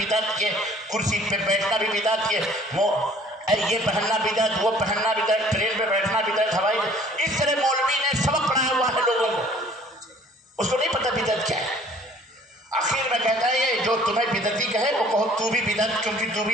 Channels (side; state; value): both; normal; correlation 0.54